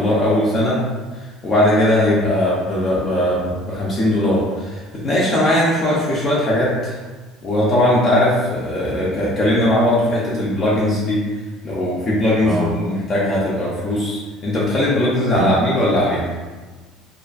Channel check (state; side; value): normal; both; correlation 0.52